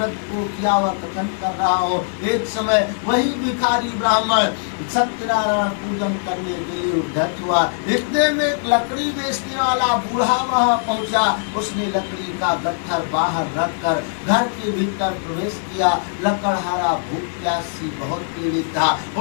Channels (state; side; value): silent; right; digital silence